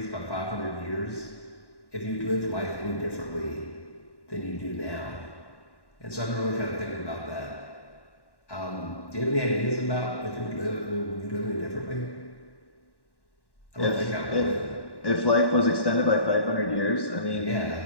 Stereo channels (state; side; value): late; right; 1.1 ms